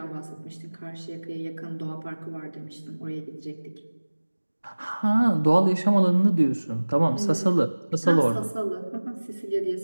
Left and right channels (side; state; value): both; inverted; correlation -1.00